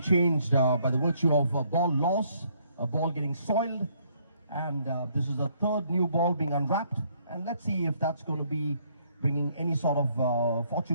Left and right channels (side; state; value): both; inverted; correlation -0.68